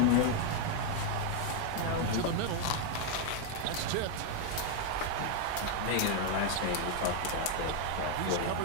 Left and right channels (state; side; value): different; both; correlation 0.01